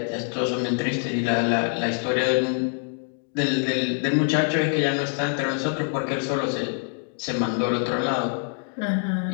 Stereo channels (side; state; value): right; silent; 56 dB below the other